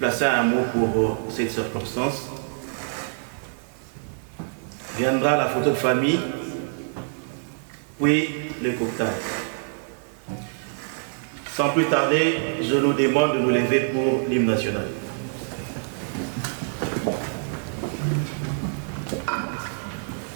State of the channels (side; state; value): left; silent; digital silence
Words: un mot pour cette circonstance. Viendra la photo de famille, puis le cocktail. Sans plus tarder, je nous demande de nous lever pour l'hymne national.